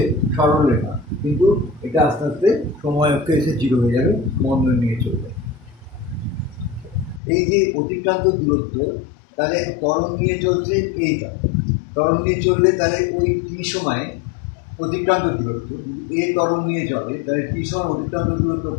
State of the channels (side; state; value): right; drops out; at 7.2 s